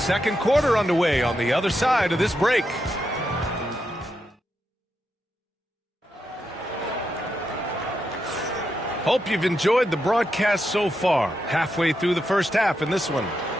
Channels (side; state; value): both; normal; correlation 0.84